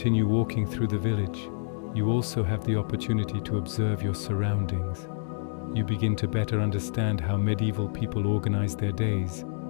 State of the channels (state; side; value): silent; right; digital silence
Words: walking through the village, you also have the opportunity to observe your surroundings. You begin to better understand how medieval people organized their days,